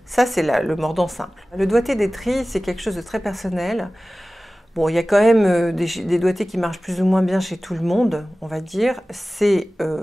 ça c'est le mordant simple. Le doigté des trilles, c'est quelque chose de très personnel. Bon, il y a quand même des doigtés qui marchent plus ou moins bien chez tout le monde, on va dire. C'est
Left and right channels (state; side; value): normal; both; correlation 0.97